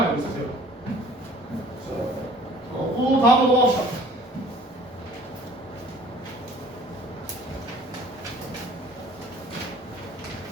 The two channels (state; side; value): normal; both; correlation 0.51